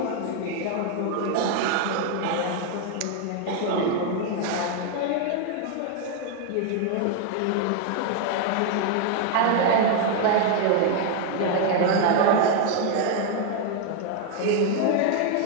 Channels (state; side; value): different; both; correlation 0.01